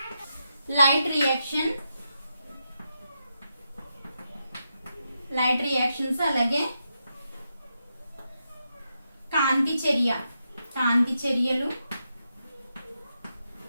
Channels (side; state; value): both; inverted; correlation -0.85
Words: లైట్ రియాక్షన్, లైట్ రియాక్షన్స్, అలాగే కాంతి చర్య, కాంతి చర్యలు,